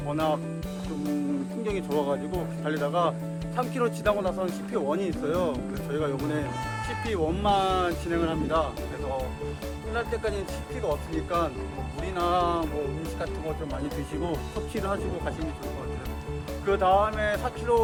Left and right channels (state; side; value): identical; both; correlation 1.00